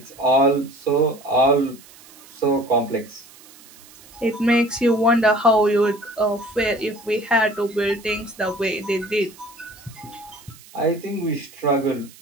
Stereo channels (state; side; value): noise; right; hiss, 23 dB below the sound